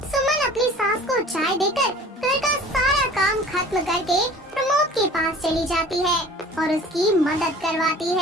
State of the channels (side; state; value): both; normal; correlation 0.45